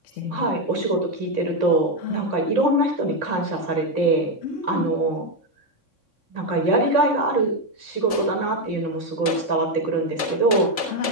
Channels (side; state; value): right; late; 3.6 ms